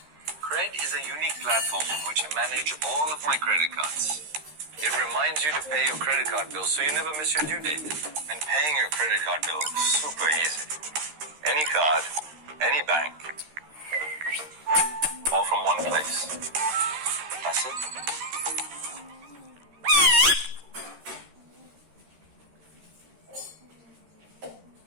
Cred is a unique platform on which I manage all of my credit cards. It reminds you to pay your credit card bill so you never miss your due date. And paying your credit card bill is super easy. Any card, any bank, all from one place. That's it.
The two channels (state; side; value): late; left; 13 ms